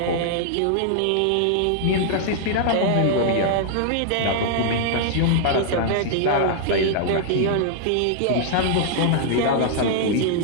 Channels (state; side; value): different; both; correlation -0.01